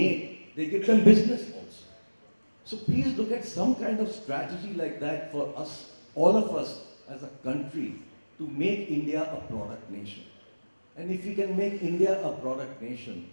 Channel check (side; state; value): both; inverted; correlation -1.00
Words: they give them business also. So please look at some kind of strategy like that for us, all of us as a country, to make India a product nation. And if we can make India a product nation,